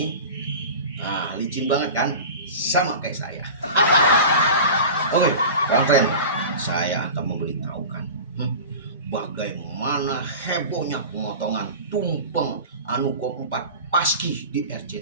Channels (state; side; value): inverted; both; correlation -0.34